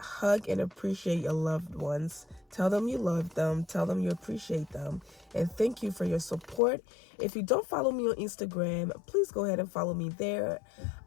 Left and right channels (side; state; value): right; drops out; at 6.6 s